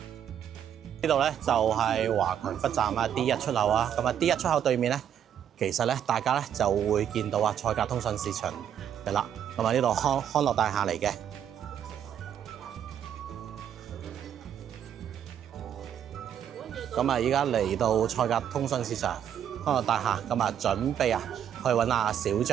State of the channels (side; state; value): left; quieter; 9.4 dB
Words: 呢度咧就係華強北站啊 D1 出口啊，咁啊 D1 出口對面咧，其實咧大家咧就會見到啊賽格通訊市場嘅啦，咁啊呢度康樂大廈嚟嘅。咁啊，依家嚟到賽格通訊市場康樂大廈，咁啊準備啊去揾阿小